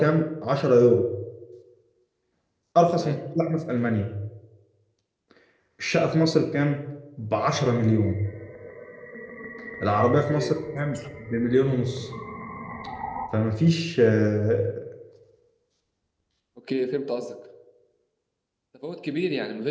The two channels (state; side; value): identical; both; correlation 1.00